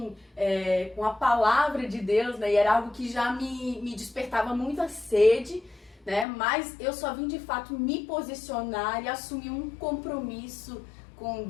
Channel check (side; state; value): right; drops out; at 6.2 s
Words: com a palavra de Deus, né? E era algo que já me despertava muita sede, né? Mas eu só vim, de fato, me posicionar e assumir um compromisso com